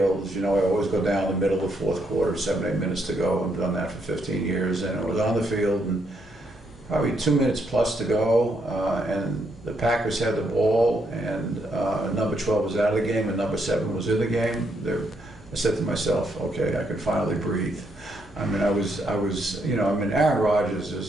I always go down the middle of the fourth quarter, 7, 8 minutes to go. I've done that for 15 years, and I was on the field, and probably 2 minutes plus to go, and the Packers had the ball, and number 12 was out of the game, and number 7 was in the game. I said to myself, okay, I can finally breathe. I mean, Aaron Rodgers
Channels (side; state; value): both; normal; correlation 0.76